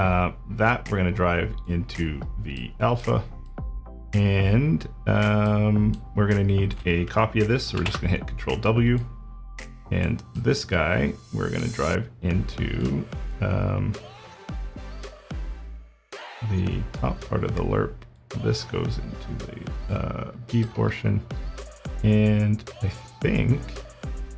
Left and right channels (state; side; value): identical; both; correlation 1.00